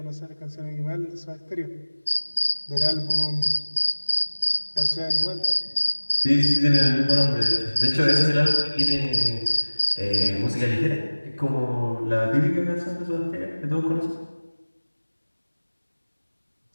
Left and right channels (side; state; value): both; inverted; correlation -1.00